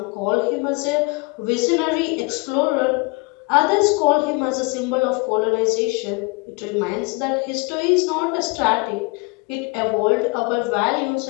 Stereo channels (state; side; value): quieter; right; 29.2 dB